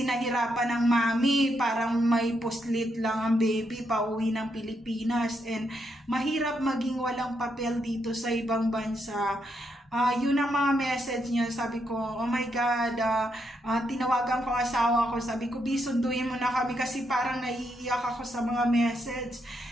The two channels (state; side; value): normal; both; correlation 0.79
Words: nahirapan ng mami, parang may puslit lang ang baby pauwi ng Pilipinas. And mahirap maging walang papel dito sa ibang bansa. Yun ang mga message niya. Sabi ko, oh my God, tinawagan ko asawa ko. Sabi ko, sunduin mo na kami kasi parang naiiyak ako sa mga message.